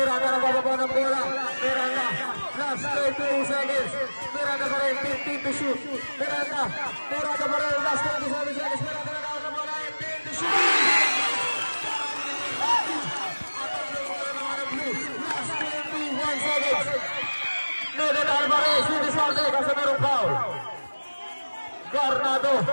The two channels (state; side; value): inverted; both; correlation -1.00